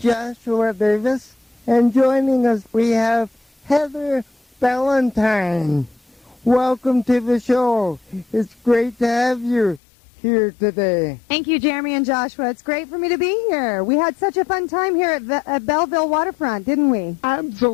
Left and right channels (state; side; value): drops out; right; at 9.8 s